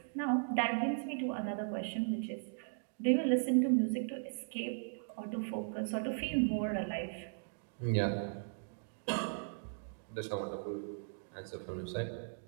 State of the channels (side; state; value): left; silent; digital silence